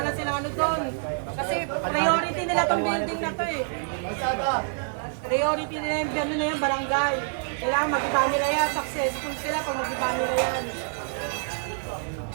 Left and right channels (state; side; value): silent; left; digital silence